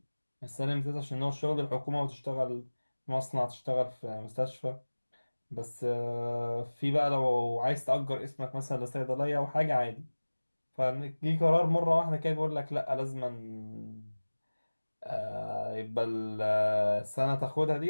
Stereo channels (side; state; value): both; inverted; correlation -1.00